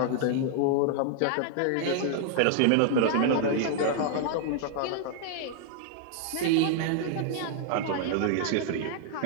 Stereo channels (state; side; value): different; both; correlation 0.00